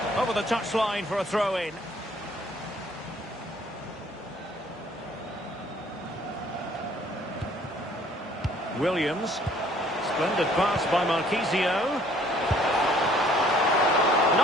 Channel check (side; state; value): both; normal; correlation 0.59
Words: Over the touchline for a throw-in. Williams. Splendid pass by Marchisio.